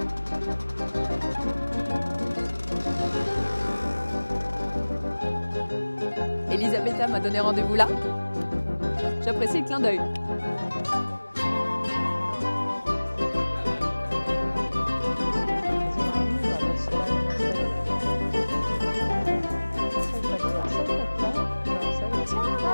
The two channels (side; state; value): both; inverted; correlation -1.00